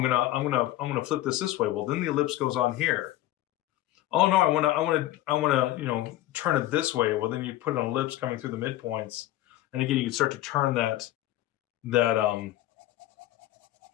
gonna flip this way. Well, then the ellipse goes on here. Oh no, I wanna turn it this way. Well, then you put an ellipse coming through the midpoints, and again you can start to turn that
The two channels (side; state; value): right; quieter; 15.0 dB